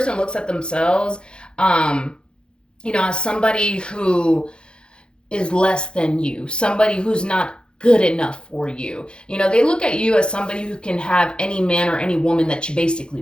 looks at themselves, as somebody who is less than you, somebody who's not good enough for you. They look at you as somebody who can have any man or any woman that you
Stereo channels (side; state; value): right; late; 0.051 ms